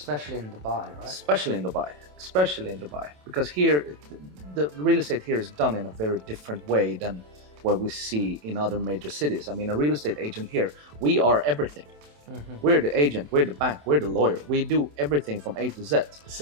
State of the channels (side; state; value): left; late; 27 ms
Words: in Dubai, right? Especially in Dubai, because here the real estate here is done in a very different way than what we see in other major cities. I mean, a real estate agent here, we are everything. We're the agent, we're the bank, we're the lawyer. We do everything from A to Z.